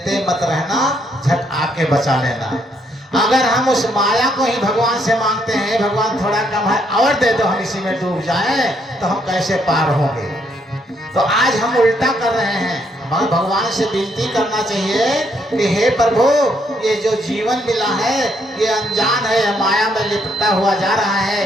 मत रहना, झट आके बचा लेना। अगर हम उस माया को ही भगवान से मांगते हैं, भगवान थोड़ा कम है और दे दो, हम इसी में डूब जाएं, तो हम कैसे पार होंगे। तो आज हम उल्टा कर रहे हैं। हमें भगवान से विनती करना चाहिए कि हे प्रभु, ये जो जीवन मिला है ये अनजान है, माया में लिपटा हुआ जा रहा है,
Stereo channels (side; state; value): both; normal; correlation 0.72